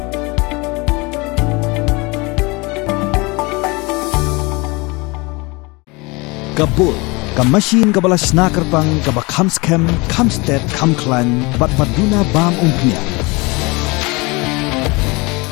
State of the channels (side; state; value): right; quieter; 25.9 dB